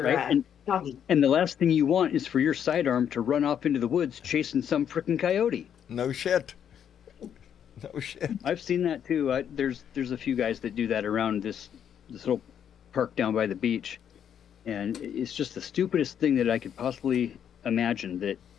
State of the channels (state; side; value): quieter; right; 8.9 dB